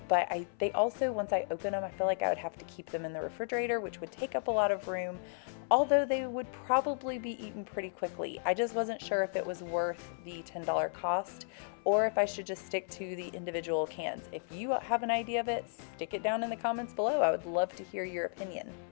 but they also, once I open them, I feel like I would have to keep them in the refrigerator, which would take up a lot of room, although they would probably be eaten pretty quickly. I just wasn't sure if it was worth the $10 cost or if I should just stick to the individual cans. If you have an idea of it, stick it down in the comments below. I would love to hear your opinion.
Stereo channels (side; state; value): right; silent; 55 dB below the other